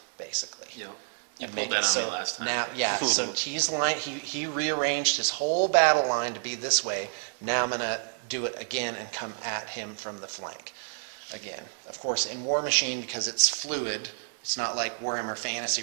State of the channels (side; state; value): left; silent; 59 dB below the other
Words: basically. Yep. And You make pulled it that so on me last time. now, yeah. So he's line. He rearranged his whole battle line to be this way. Now I'm going to do it again and come at him from the flank. Again, of course, in War Machine, because it's fluid, it's not like Warhammer Fantasy